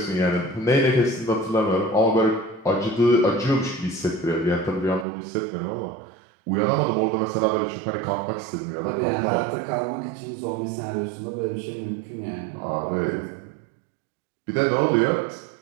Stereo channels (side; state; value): left; drops out; at 5.1 s